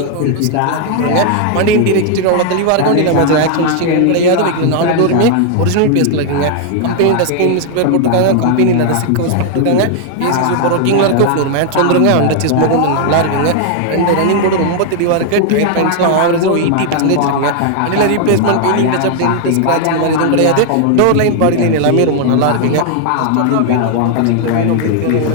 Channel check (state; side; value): different; both; correlation 0.00